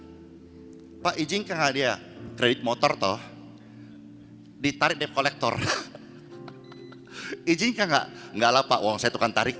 Pak izinkan nggak dia kredit motor toh? Ditarik debt kolektor. Izinkan nggak? Nggak lah Pak, uang saya tukang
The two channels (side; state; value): both; identical; correlation 1.00